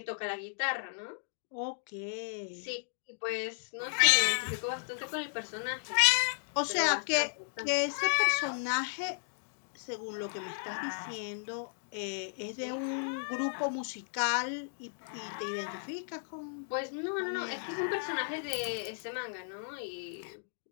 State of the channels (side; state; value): right; silent; digital silence